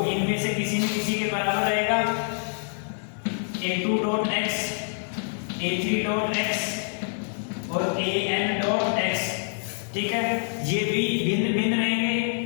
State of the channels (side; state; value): right; silent; digital silence